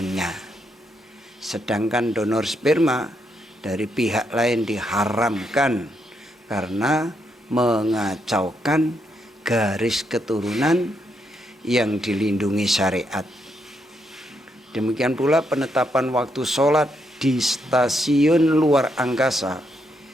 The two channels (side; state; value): both; normal; correlation 0.78